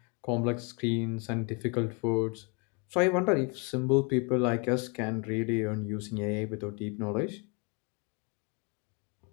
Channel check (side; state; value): right; quieter; 32.0 dB